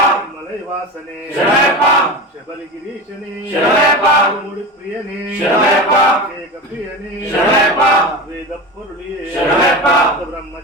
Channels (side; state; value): both; normal; correlation 0.26